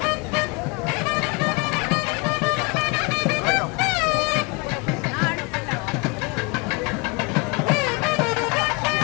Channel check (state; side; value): quieter; right; 28.7 dB